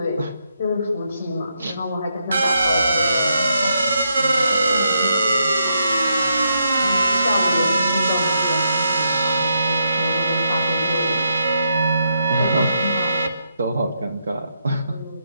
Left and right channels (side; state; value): both; inverted; correlation -0.80